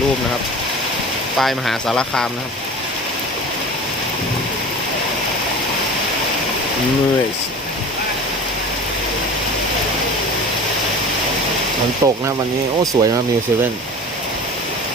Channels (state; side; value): normal; both; correlation 0.37